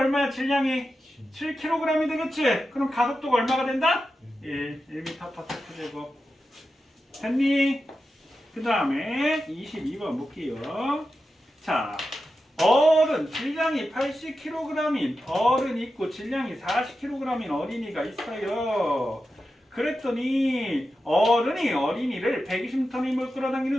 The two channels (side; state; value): both; normal; correlation 0.91